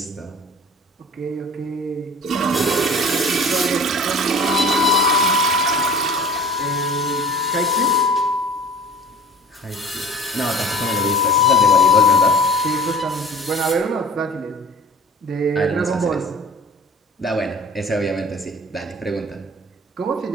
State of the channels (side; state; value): both; normal; correlation 0.43